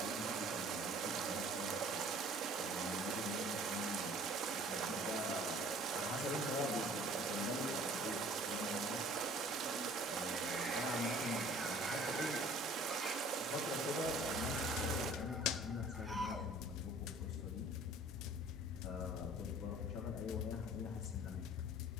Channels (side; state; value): both; normal; correlation 0.51